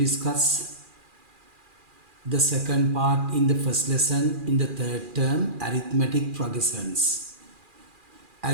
the second part in the first lesson in the third term, arithmetic progressions.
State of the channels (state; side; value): late; left; 2.4 ms